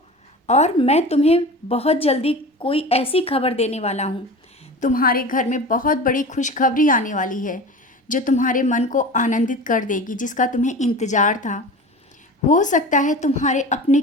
और मैं तुम्हें बहुत जल्दी कोई ऐसी खबर देने वाला हूँ। तुम्हारे घर में बहुत बड़ी खुशखबरी आने वाली है, जो तुम्हारे मन को आनंदित कर देगी, जिसका तुम्हें इंतज़ार था। हो सकता है तुम्हारे अपने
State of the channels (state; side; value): normal; both; correlation 0.34